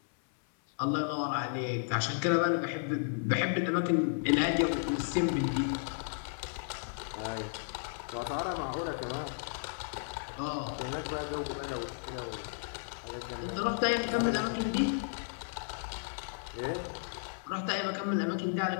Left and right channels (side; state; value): right; silent; 55 dB below the other